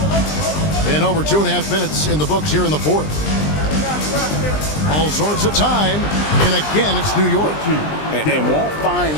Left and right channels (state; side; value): late; right; 20 ms